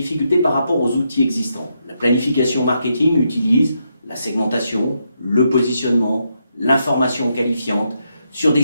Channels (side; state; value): both; inverted; correlation -0.81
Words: par rapport aux outils existants. La planification marketing utilise la segmentation, le positionnement, l'information qualifiante, sur des